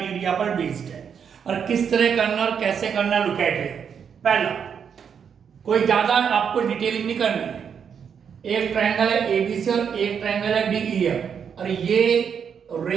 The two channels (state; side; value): quieter; left; 7.3 dB